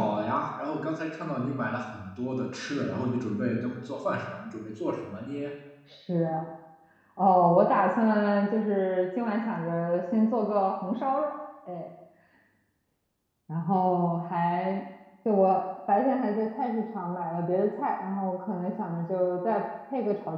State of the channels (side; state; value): both; identical; correlation 1.00